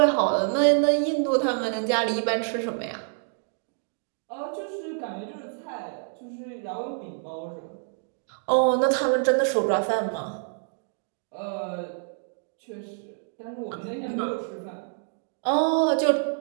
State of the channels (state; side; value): silent; left; digital silence